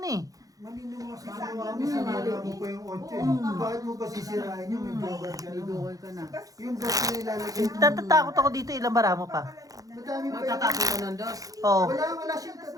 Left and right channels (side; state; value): left; late; 0.17 ms